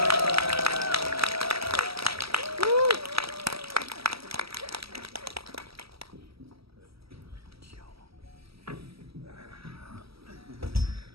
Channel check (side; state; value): left; late; 0.76 ms